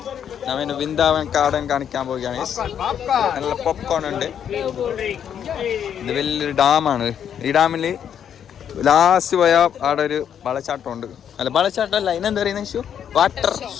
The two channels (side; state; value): right; quieter; 8.8 dB